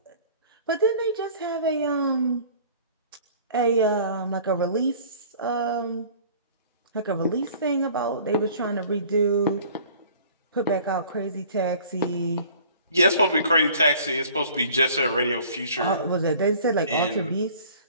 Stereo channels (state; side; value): inverted; both; correlation -0.50